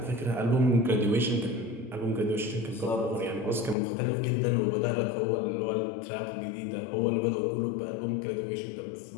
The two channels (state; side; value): drops out; right; at 3.8 s